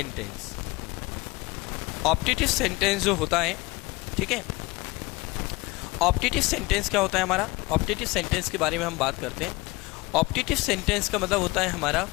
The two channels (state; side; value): quieter; right; 23.0 dB